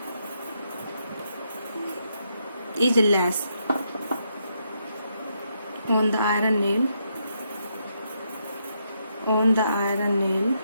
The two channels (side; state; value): both; inverted; correlation -0.79